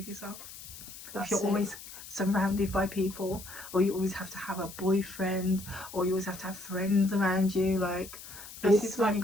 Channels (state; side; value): noise; left; hiss, 14 dB below the sound